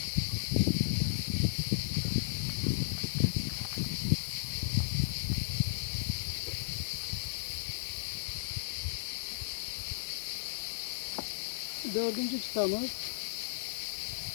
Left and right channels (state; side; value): silent; right; 55 dB below the other